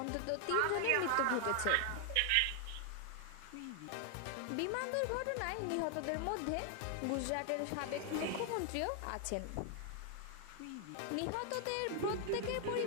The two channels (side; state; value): both; different; correlation 0.00